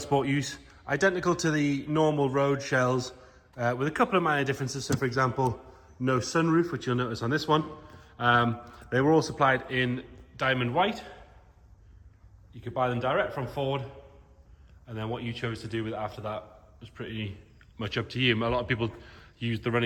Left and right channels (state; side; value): identical; both; correlation 1.00